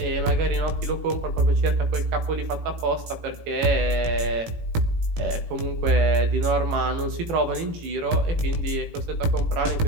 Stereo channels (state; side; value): late; left; 18 ms